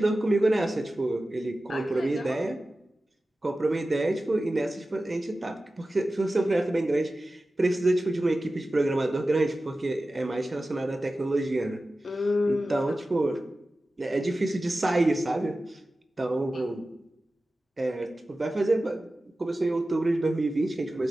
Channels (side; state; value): both; normal; correlation 0.95